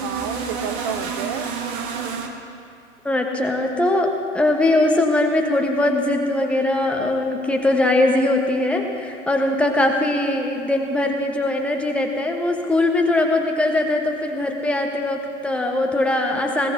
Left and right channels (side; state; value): both; normal; correlation 0.68